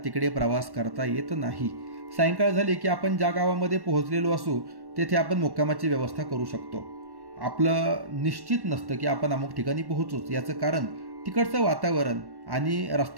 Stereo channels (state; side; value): late; left; 1.1 ms